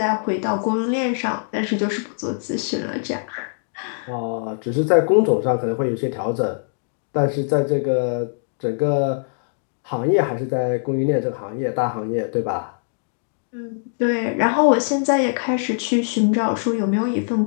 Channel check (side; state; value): right; silent; digital silence